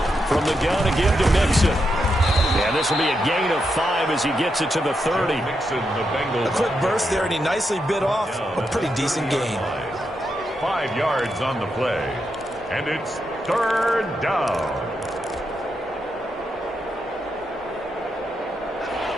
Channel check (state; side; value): normal; both; correlation 0.84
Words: From the gun again to Mixon. Yeah, this will be a gain of 5 as he gets it to the 30. A quick burst there, and he nicely bit off a pretty decent gain. 5 yards on the play, and it's third down.